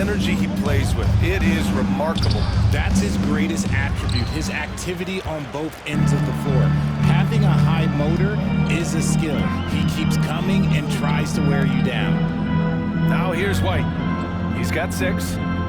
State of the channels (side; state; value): both; identical; correlation 1.00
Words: he plays with, it is remarkable. That's his greatest attribute, his activity on both ends of the floor. Having a high motor is a skill. He keeps coming and tries to wear you down. Now here's White. He's got 6.